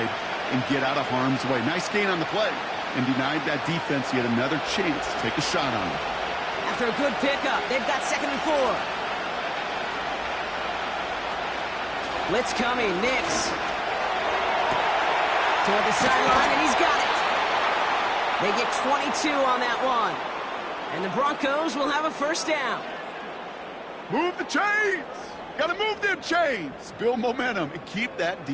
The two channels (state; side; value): identical; both; correlation 1.00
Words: and get out of harm's way. Nice gain on the play, and denied that defense yet another chance to take a shot on him. After a good pickup, they've got 2nd and 4. Blitz coming, Nix. Toward the sideline, and he's got it. They get 22 on that one. And the Broncos will have a 1st down. Move the chains! Gotta move them chains! Build momentum and keep that